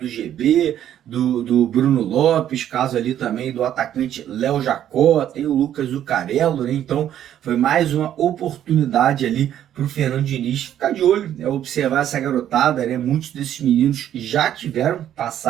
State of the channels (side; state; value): left; quieter; 10.9 dB